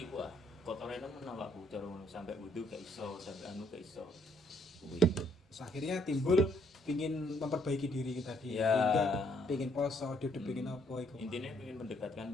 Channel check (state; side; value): normal; both; correlation 0.68